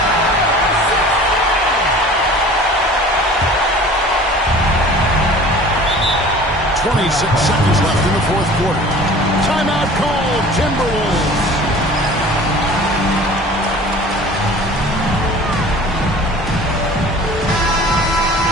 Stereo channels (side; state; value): both; normal; correlation 0.44